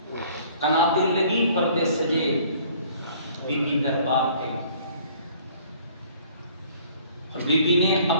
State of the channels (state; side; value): inverted; both; correlation -0.55